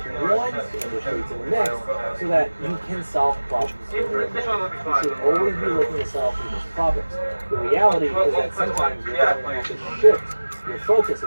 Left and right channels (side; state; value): both; inverted; correlation -1.00